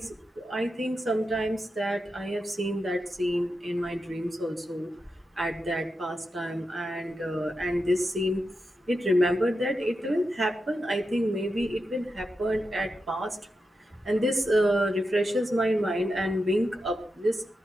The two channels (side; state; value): both; normal; correlation 0.88